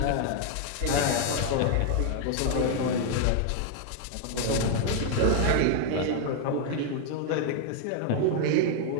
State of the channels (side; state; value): both; different; correlation 0.00